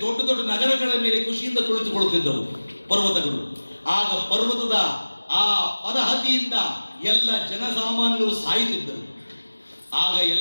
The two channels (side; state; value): both; inverted; correlation -1.00